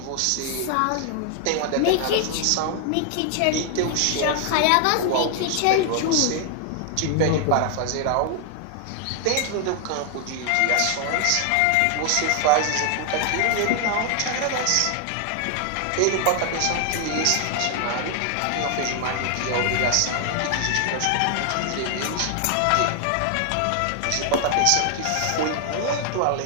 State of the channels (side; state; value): both; different; correlation 0.00